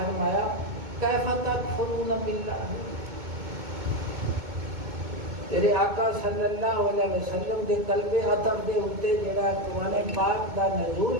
کیف تکفرون باللہ، تیرے آقا صلی اللہ علیہ وسلم دے قلب عطر دے اتے جڑا قرآن پاک دا نزول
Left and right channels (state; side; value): late; left; 2.2 ms